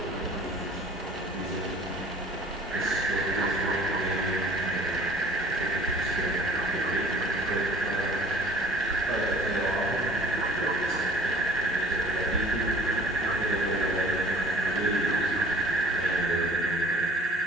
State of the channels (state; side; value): normal; both; correlation 0.50